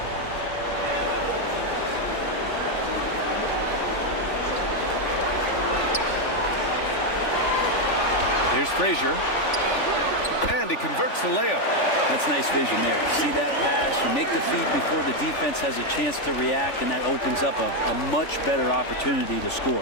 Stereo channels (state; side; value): late; right; 3.5 ms